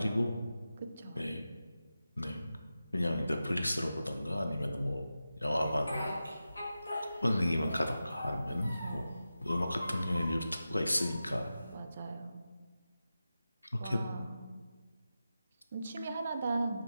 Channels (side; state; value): both; inverted; correlation -0.92